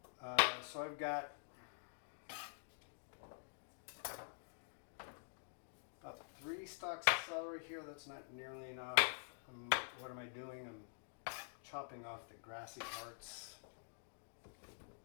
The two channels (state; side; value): silent; right; digital silence